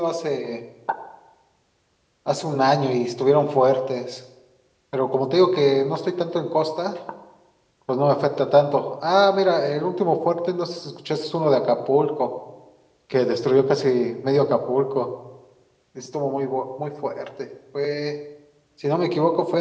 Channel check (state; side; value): identical; both; correlation 1.00